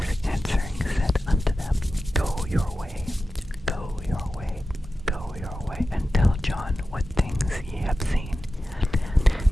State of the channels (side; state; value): both; normal; correlation 0.93